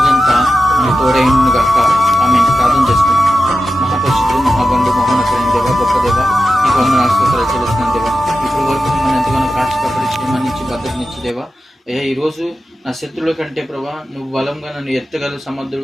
మన తోడైన గాక. ఆమె ప్రార్థన చేసుకున్నాం. మహాపరిశుద్ధుడు, మహాగండు, మహోన్నతుడైన దేవ, గొప్ప దేవ, నీకు వందనాలు స్తోత్రాలు చెల్లిస్తున్నాను దేవా. ఇప్పుడు వరకు మిమ్మల్ని ఎంతగానో కాక్షపడి క్షేమాన్నిచ్చి భద్రతనిచ్చి దేవా. ఈరోజు నా శత్రువుల కంటే ప్రభా నువ్వు బలంగా నన్ను ఎత్తగల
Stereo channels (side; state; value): both; normal; correlation 0.92